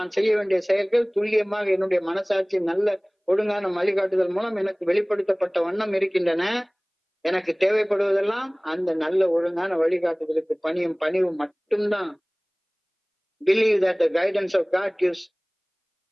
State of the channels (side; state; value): both; identical; correlation 1.00